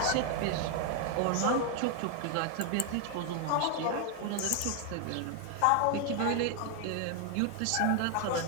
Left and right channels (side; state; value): both; different; correlation 0.00